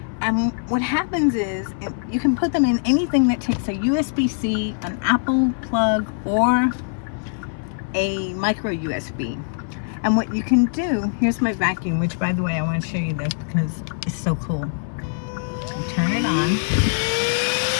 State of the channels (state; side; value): silent; right; 58 dB below the other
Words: And what happens is you can put them in anything that takes a USB-C, an Apple plug, or a micro USB. And what you can do, here's my vacuum, which by the way, I want to show you this because it's so cool. You turn it on. Look